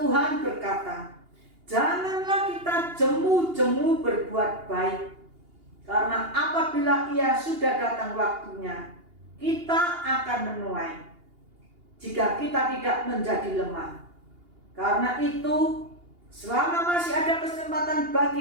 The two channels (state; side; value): late; left; 2.8 ms